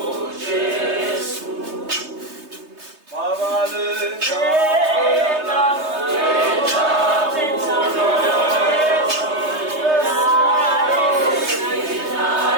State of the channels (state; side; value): late; left; 3.3 ms